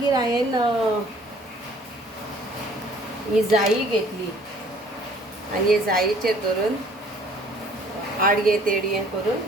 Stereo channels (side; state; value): both; normal; correlation 0.56